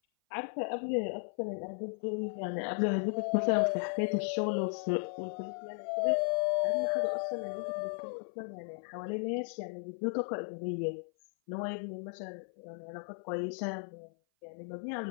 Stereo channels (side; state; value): right; silent; 54 dB below the other